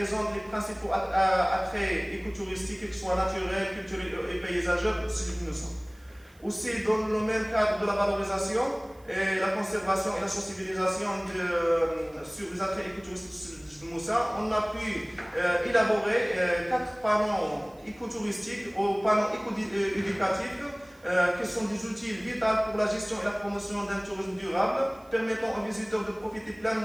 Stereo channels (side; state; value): right; noise; hiss, 30 dB below the sound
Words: les principaux attraits écotouristiques, qu'ils soient naturels, culturels et paysagers de Jbel Moussa. Aussi, dans le même cadre de la valorisation, et la conservation et la sensibilisation sur les attraits écotouristiques de Moussa, on a pu élaborer 4 panneaux écotouristiques ou panneaux éco-éducatifs qui sont des outils vitaux pour la gestion et la promotion d'un tourisme durable, permettant aux visiteurs de profiter